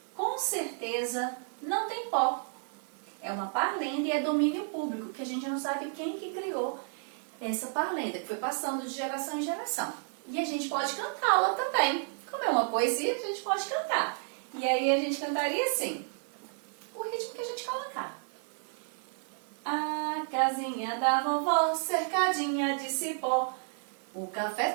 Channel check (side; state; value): left; silent; 56 dB below the other